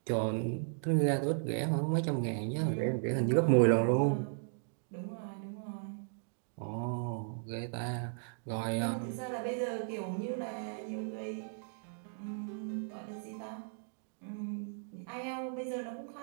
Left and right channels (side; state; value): left; silent; digital silence